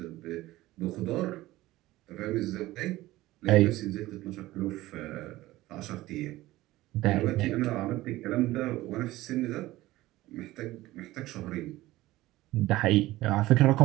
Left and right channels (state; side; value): quieter; left; 17.3 dB